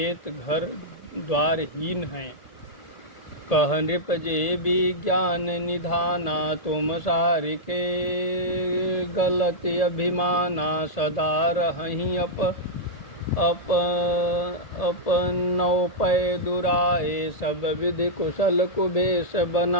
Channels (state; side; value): late; right; 1.8 ms